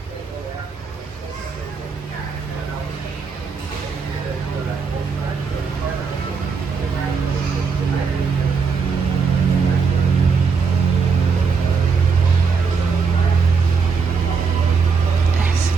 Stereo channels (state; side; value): quieter; left; 5.3 dB